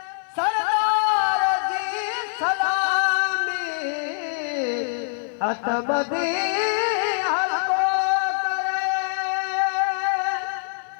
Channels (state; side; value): silent; right; 59 dB below the other